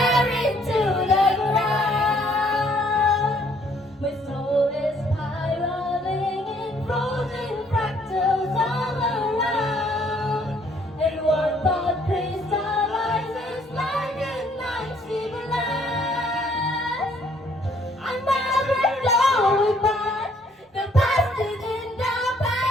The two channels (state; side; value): normal; both; correlation 0.64